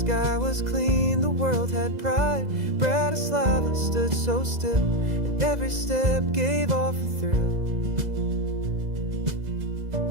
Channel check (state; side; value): late; left; 2.0 ms